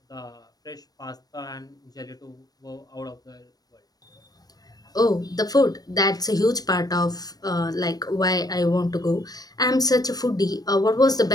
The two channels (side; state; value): right; late; 0.19 ms